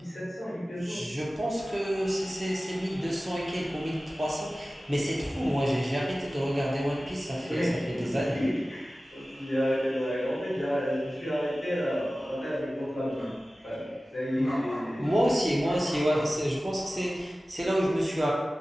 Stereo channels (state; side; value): normal; both; correlation 0.96